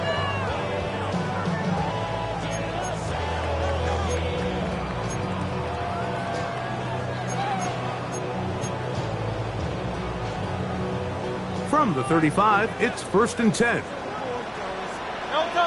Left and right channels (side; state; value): both; identical; correlation 1.00